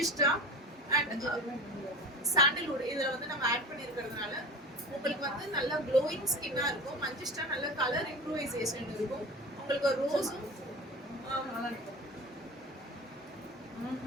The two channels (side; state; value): both; normal; correlation 0.34